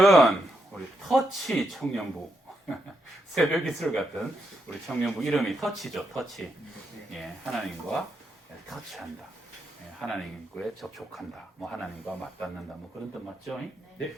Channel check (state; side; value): normal; both; correlation 0.81